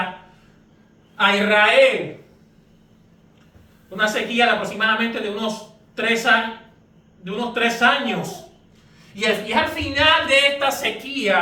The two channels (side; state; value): both; identical; correlation 1.00